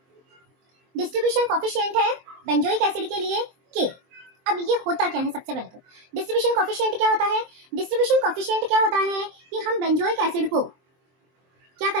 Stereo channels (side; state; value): left; late; 23 ms